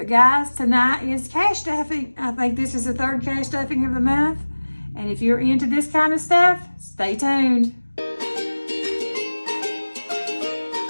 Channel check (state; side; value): inverted; both; correlation -1.00